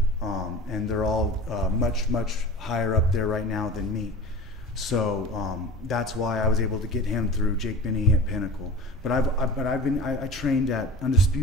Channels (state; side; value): normal; both; correlation 0.37